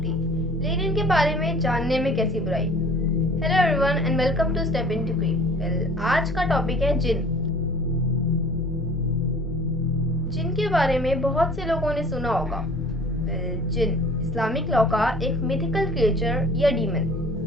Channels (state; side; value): normal; both; correlation 0.48